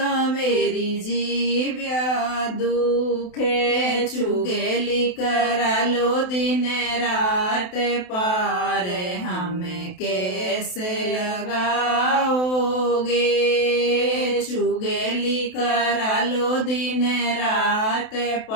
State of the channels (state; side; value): late; right; 28 ms